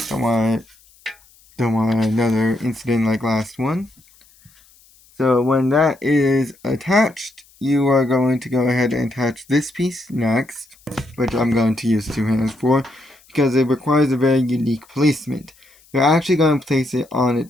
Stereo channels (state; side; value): noise; left; hiss, 29 dB below the sound